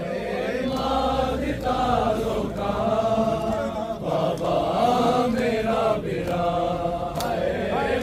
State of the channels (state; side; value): identical; both; correlation 1.00